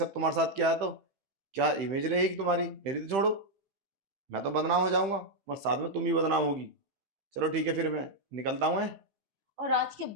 तुम्हारे साथ किया है, तो क्या इमेज रहेगी तुम्हारी? मेरी तो छोड़ो, मैं तो बदनाम हो जाऊंगा, बस साथ में तुम ही बदनाम होगी। चलो ठीक है, फिर मैं निकलता हूँ। और आज के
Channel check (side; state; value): left; late; 15 ms